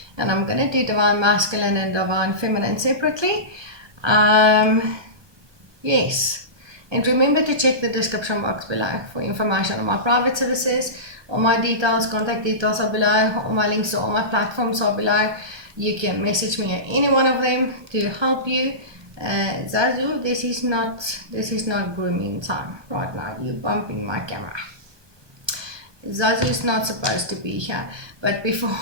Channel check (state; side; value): late; left; 1.2 ms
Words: And I'm going to do Divine Masculine and Divine Feminine separately. Yes. And remember to check the description box below for information on my private services. All my details, contact details are below. All my links to all my platforms are below. You can message me at any one of them to help you. Zazu, this is not grooming time right now. You're bumping my camera. Zazu is not supposed to be here. But before,